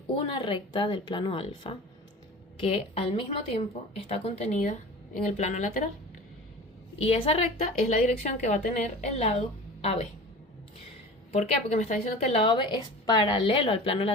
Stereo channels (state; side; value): normal; both; correlation 0.37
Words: una recta del plano alfa que al mismo tiempo está contenida en el plano lateral. Y esa recta es la dirección que va a tener el lado AB. ¿Por qué? Porque me está diciendo que el lado AB es paralelo al plano